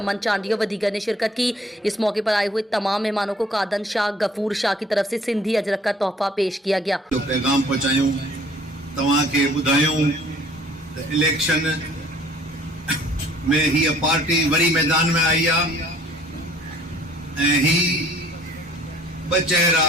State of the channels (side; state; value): both; normal; correlation 0.55